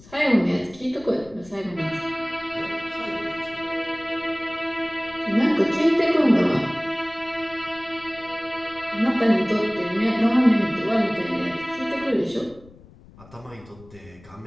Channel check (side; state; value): left; noise; rumble, 23 dB below the sound